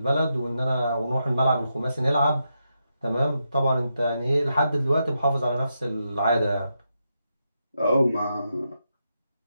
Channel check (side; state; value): both; inverted; correlation -0.84